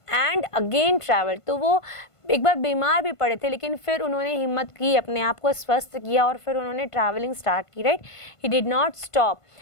and again travel. तो वो एक बार बीमार भी पड़े थे लेकिन फिर उन्होंने हिम्मत की, अपने आप को स्वस्थ किया और फिर उन्होंने ट्रैवलिंग स्टार्ट की, right. He did not stop,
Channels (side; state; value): right; late; 1.5 ms